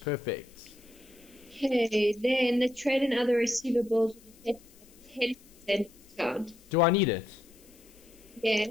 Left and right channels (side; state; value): left; noise; hiss, 26 dB below the sound